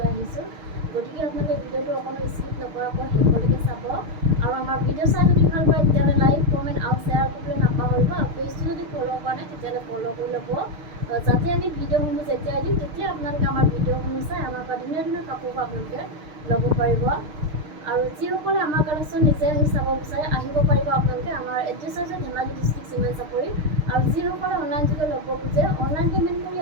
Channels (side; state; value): left; late; 6.6 ms